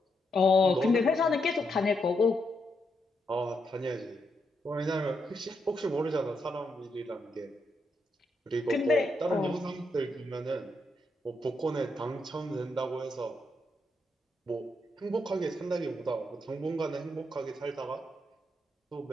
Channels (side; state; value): both; normal; correlation 0.80